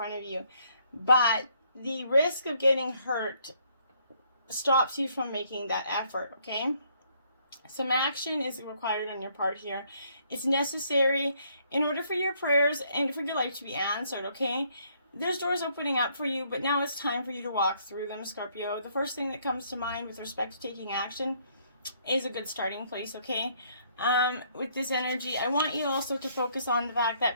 of you, but the risk of getting hurt stops you from making that effort, okay? Some action is required on your part here. It's necessary in order for your prayers and for your life to be answered, okay? There's doors opening up for you, but now it's time for you to walk through them, Scorpio. The first thing that comes to mind with respect to taking action is a good starting place, okay? With this energy, I want you also to focus on the fact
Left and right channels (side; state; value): both; inverted; correlation -0.67